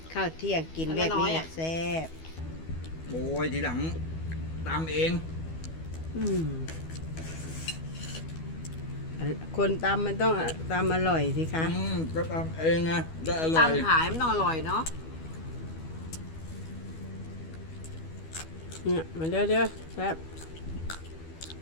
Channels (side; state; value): right; late; 12 ms